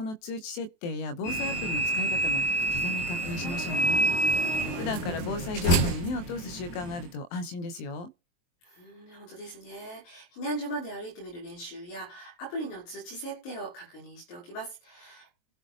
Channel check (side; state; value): right; late; 23 ms